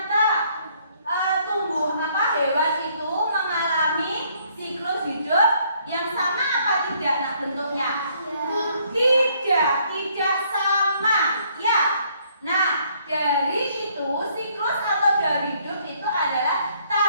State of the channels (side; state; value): both; inverted; correlation -0.66